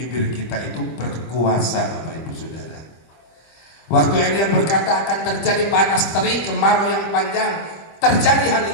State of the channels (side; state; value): right; late; 25 ms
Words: kita itu berkuasa, Bapak Ibu Saudara. Waktu Elia berkata akan terjadi panas terik, kemarau yang panjang, terjadi hal